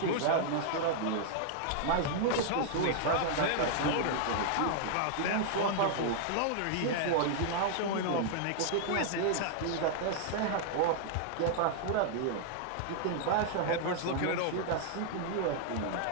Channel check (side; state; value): both; different; correlation -0.01